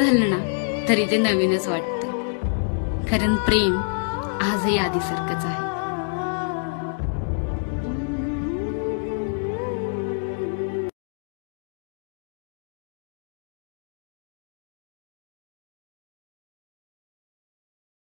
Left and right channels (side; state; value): right; silent; digital silence